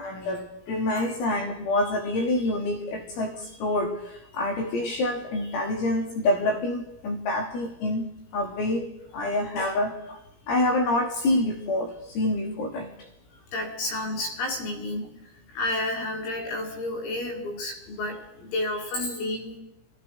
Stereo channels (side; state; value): right; late; 17 ms